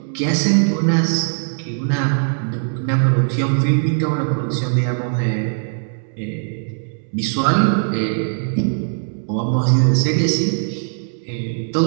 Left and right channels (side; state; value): left; silent; 66 dB below the other